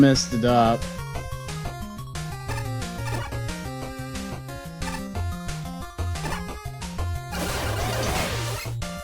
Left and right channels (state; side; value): identical; both; correlation 1.00